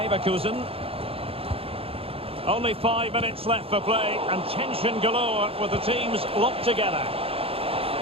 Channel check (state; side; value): late; left; 0.27 ms